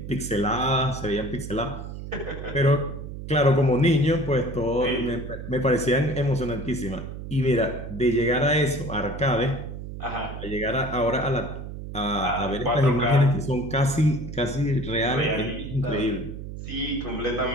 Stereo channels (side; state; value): right; noise; hum, 9 dB below the sound